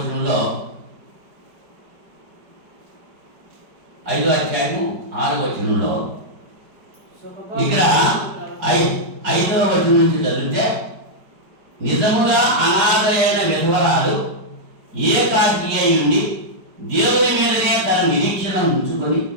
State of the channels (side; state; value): left; late; 4.9 ms